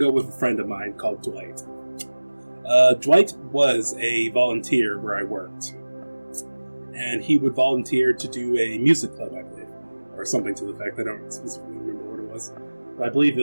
go with a friend of mine called Dwight. Dwight was a volunteer where I worked. And he would volunteer to do a music club, I believe. Or something to the effect. I don't specifically remember what it was. But I believe it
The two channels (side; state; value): both; inverted; correlation -1.00